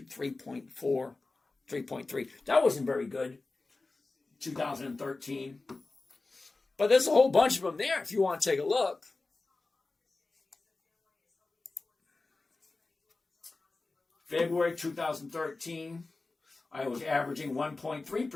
3.4, 3.3. That wasn't very good, 2013. But there's a whole bunch of them there if you want to take a look. February 2013, I was averaging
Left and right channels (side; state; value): right; quieter; 3.5 dB